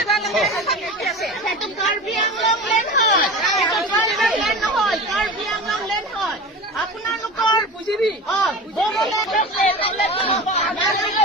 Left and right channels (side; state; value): both; normal; correlation 0.31